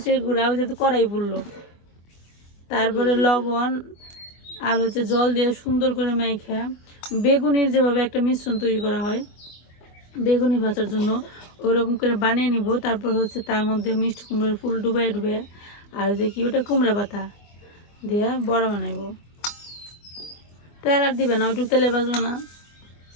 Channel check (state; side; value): late; right; 25 ms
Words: গুঁড়া, যেহেতু কড়াই পড়লো, তারপরে লবণ আর হচ্ছে জল দিয়ে সুন্দর করে মাইখা বেগুনির যেভাবে একটা মিশ্রণ তৈরি করা হয় বেগুনি ভাজার জন্য, ওইরকম করে বানিয়ে নিব। তারপর হচ্ছে তার মধ্যে মিষ্টি কুমড়ার ফুল ডুবাই ডুবে আর যে কি ওটা কুমড়া পাতা দিয়ে বড়া বানাইব। তেল আর দিবে না? ওইটুকু তেলে বাজবে না?